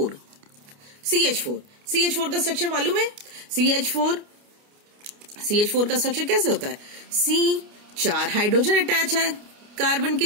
CH4 का स्ट्रक्चर मालूम है, CH4 का स्ट्रक्चर कैसे होता है, C 4 हाइड्रोजन अटैच है कार्बन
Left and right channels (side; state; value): left; late; 29 ms